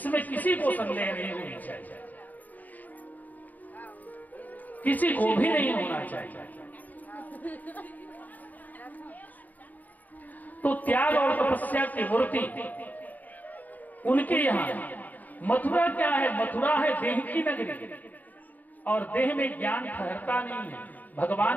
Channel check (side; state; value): right; late; 0.081 ms